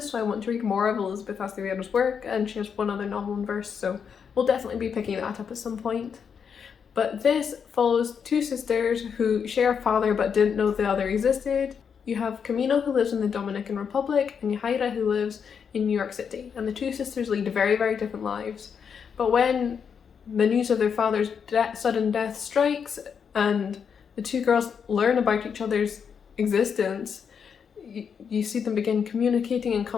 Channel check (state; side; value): quieter; right; 6.9 dB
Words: so I want to read more of Elizabeth Acevedo's work, and she has one other novel in verse, so we'll definitely be picking that up at some point. But this follows two sisters who share a father but didn't know the other existed. You have Camino, who lives in the Dominican Republic, and Yahaira, who lives in New York City, and the two sisters lead very, very different lives. But when the news of their father's sudden death strikes, and the two girls learn about each other's existence, you see them begin communicating and